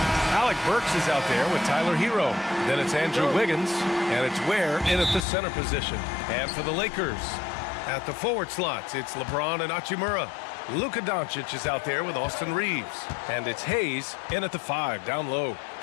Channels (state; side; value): drops out; right; at 5.2 s